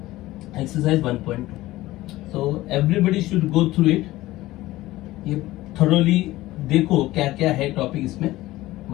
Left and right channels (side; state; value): right; quieter; 17.3 dB